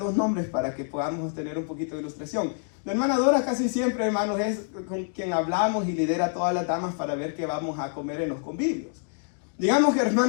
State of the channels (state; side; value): silent; right; digital silence